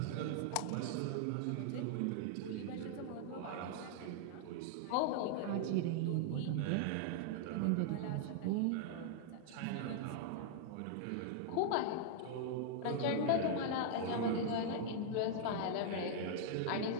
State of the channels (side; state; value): both; different; correlation -0.01